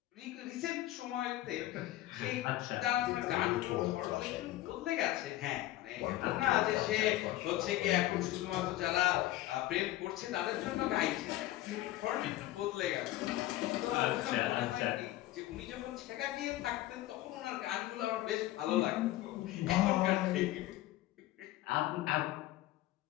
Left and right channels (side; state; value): right; quieter; 15.7 dB